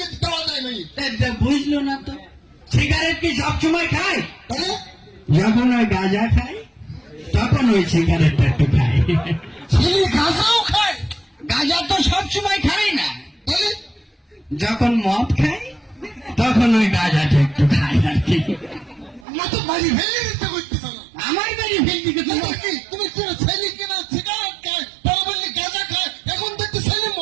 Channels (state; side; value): drops out; left; at 19.2 s